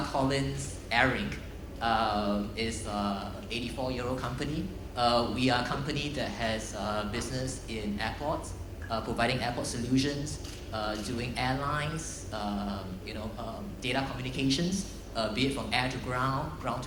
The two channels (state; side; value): identical; both; correlation 1.00